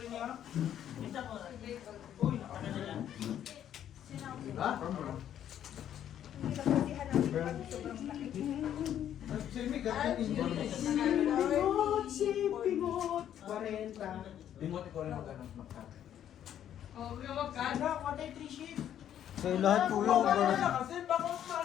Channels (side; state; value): right; quieter; 10.4 dB